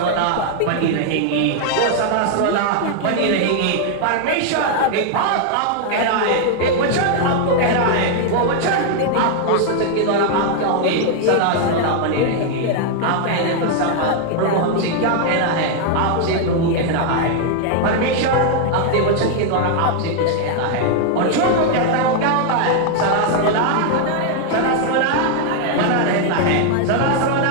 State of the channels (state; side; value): different; both; correlation 0.00